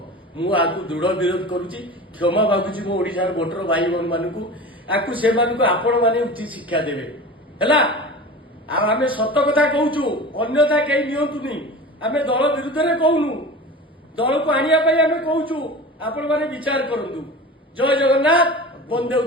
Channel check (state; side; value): normal; both; correlation 0.34